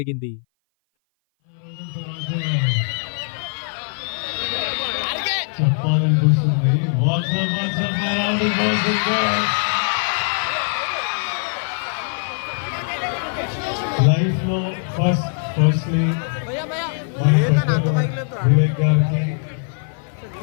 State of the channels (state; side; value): silent; right; 57 dB below the other